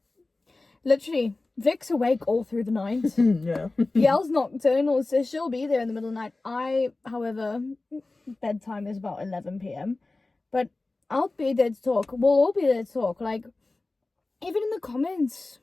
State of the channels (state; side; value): quieter; right; 3.2 dB